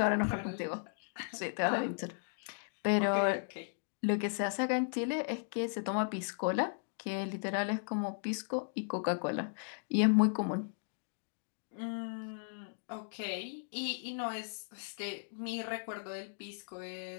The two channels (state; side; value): silent; right; digital silence